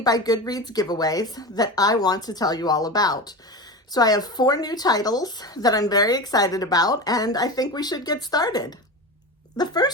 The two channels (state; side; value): normal; both; correlation 0.26